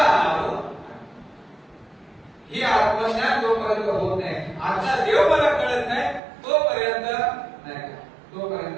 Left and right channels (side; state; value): left; drops out; at 6.2 s